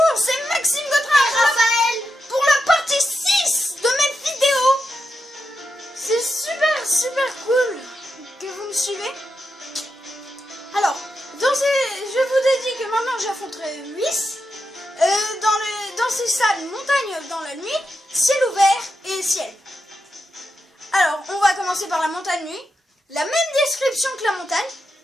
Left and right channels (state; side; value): normal; both; correlation 0.87